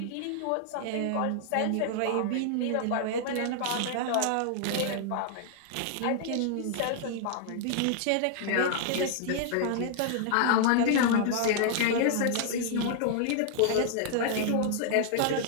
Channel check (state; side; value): different; both; correlation 0.00